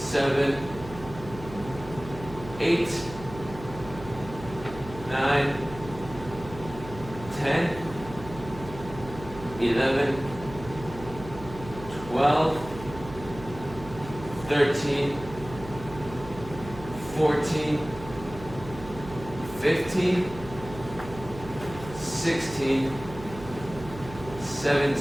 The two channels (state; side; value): noise; right; hum, 14 dB below the sound